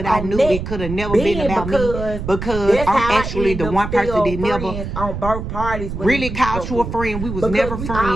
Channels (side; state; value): right; noise; rumble, 6 dB below the sound